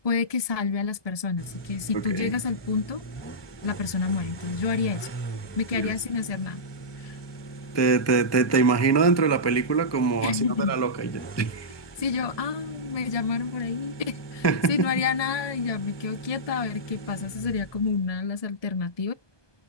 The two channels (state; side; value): late; right; 1.2 ms